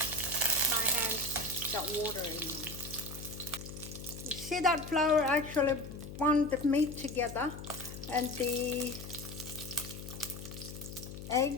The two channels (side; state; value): left; noise; hum, 10 dB below the sound